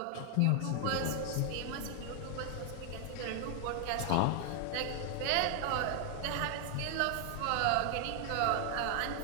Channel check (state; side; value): different; both; correlation 0.00